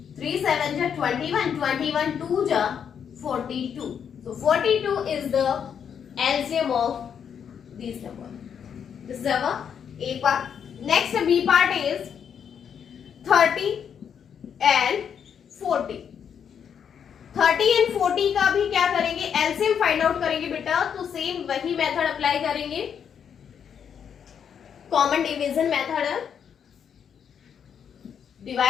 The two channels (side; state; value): right; quieter; 7.8 dB